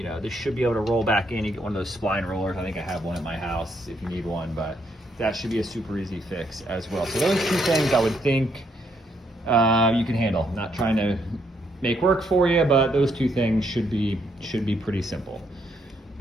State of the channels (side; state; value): both; normal; correlation 0.74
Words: know, this should be able to roll back in. You get one of those spline rollers. I think I have one at my house if you need one, but that should be a super easy fix as well. So those two things I would think you can handle. I'm not trying to make work for you, but those two things should be pretty simple.